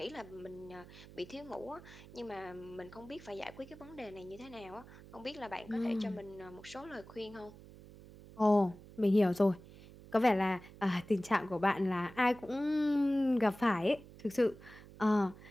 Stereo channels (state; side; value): noise; right; hum, 19 dB below the sound